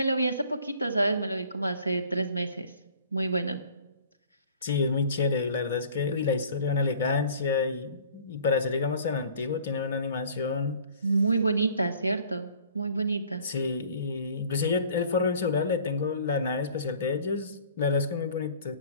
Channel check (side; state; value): both; inverted; correlation -0.51